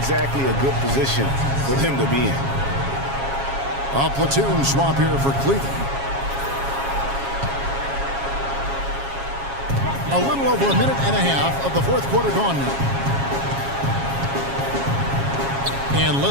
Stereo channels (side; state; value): left; late; 7.3 ms